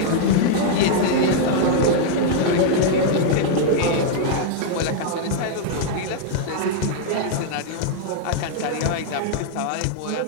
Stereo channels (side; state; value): both; different; correlation -0.01